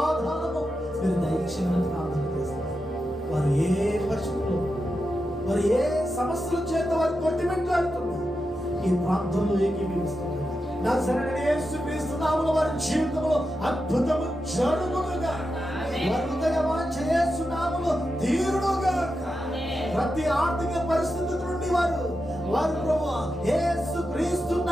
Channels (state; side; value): normal; both; correlation 0.89